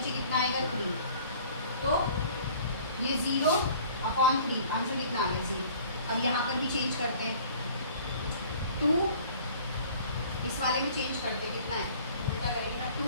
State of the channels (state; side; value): inverted; both; correlation -0.50